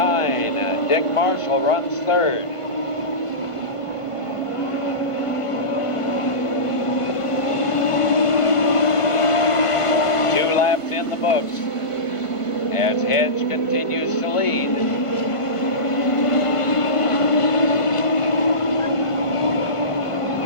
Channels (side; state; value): right; late; 1.5 ms